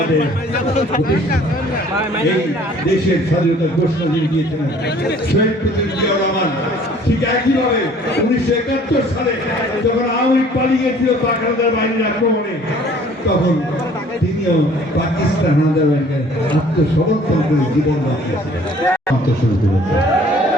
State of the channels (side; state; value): both; normal; correlation 0.54